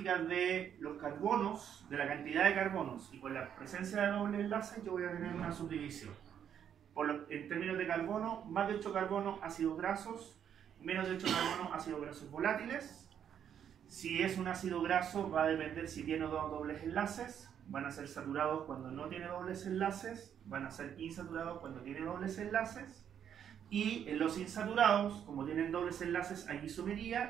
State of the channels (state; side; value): quieter; left; 8.9 dB